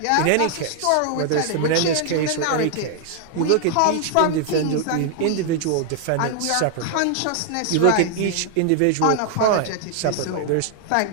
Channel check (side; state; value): both; different; correlation 0.00